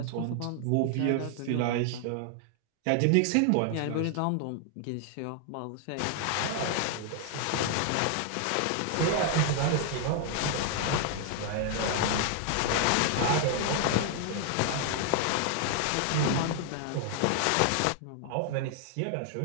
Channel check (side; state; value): both; different; correlation 0.00